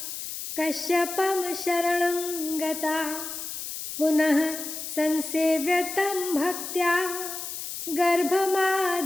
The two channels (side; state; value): left; noise; hiss, 7 dB below the sound